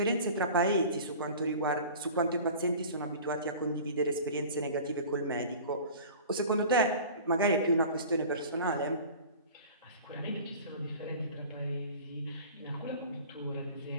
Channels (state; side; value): inverted; both; correlation -0.41